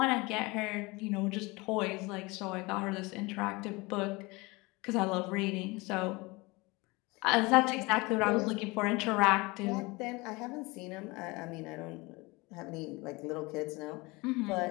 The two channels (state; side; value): quieter; right; 24.4 dB